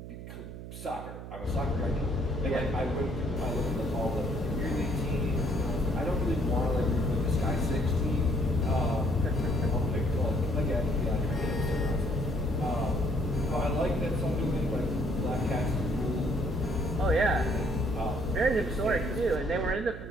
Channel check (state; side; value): noise; right; hum, 11 dB below the sound